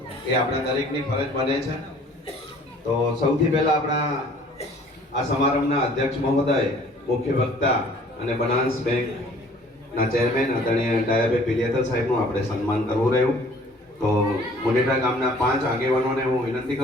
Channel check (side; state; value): both; normal; correlation 0.54